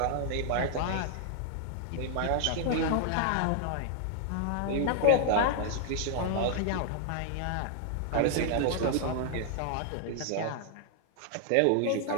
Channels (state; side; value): different; both; correlation -0.01